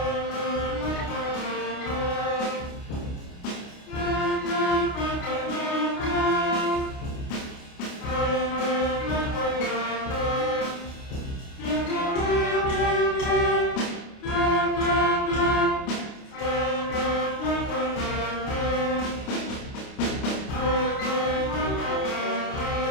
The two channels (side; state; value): right; late; 29 ms